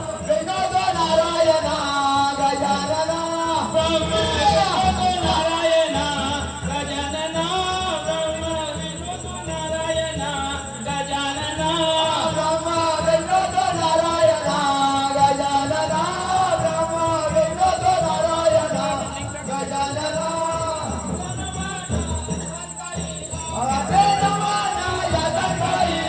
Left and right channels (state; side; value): identical; both; correlation 1.00